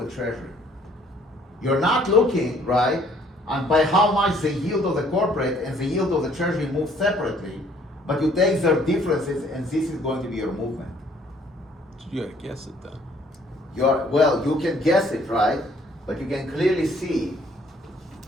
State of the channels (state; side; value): normal; both; correlation 0.61